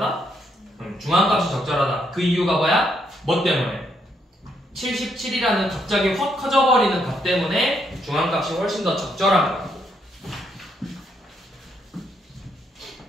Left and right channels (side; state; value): both; normal; correlation 0.75